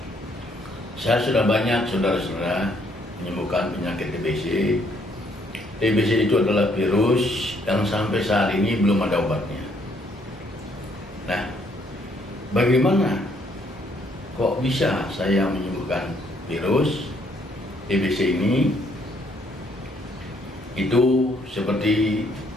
Saya sudah banyak saudara-saudara menyembuhkan penyakit TBC. TBC itu adalah virus yang sampai saat ini belum ada obatnya. Nah, bagaimana kok bisa saya menyembuhkan virus TBC ini? Itu seperti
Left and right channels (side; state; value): both; normal; correlation 0.68